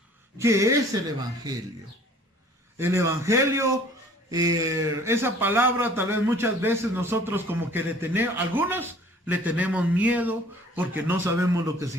¿Qué es el evangelio? El evangelio, esa palabra tal vez muchas veces nosotros como que algunos le tenemos miedo porque no sabemos lo que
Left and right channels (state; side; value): normal; both; correlation 0.52